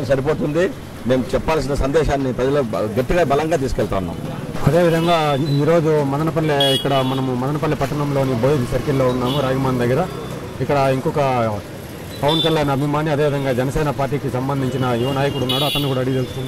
సరిపోతుంది. మేము చెప్పాల్సిన సందేశాన్ని ప్రజలు గట్టిగా బలంగా తీసుకెళ్తా ఉన్నాం. అదేవిధంగా ఈరోజు మనము మదనపల్లి పట్టణంలోని బోయి సర్కిల్లో ఉన్నాము, రాగిమాన్ దగ్గర. ఇక్కడ ఇంకొక పవన్ కళ్యాణ్ అభిమాని అదేవిధంగా జనసేన పార్టీకి సంబంధించిన యువ నాయకుడు ఉన్నాడు, అతను కూడా అడిగి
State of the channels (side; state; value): both; identical; correlation 1.00